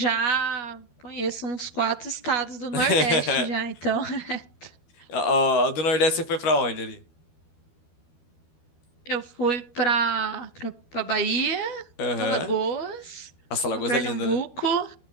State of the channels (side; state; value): right; late; 12 ms